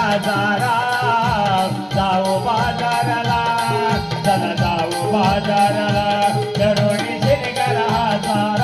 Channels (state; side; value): identical; both; correlation 1.00